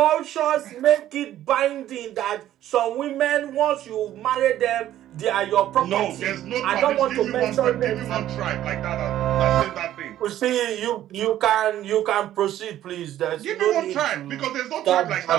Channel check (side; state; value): left; quieter; 12.6 dB